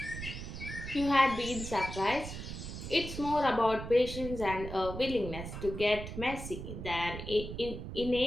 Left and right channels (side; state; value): right; noise; rumble, 8 dB below the sound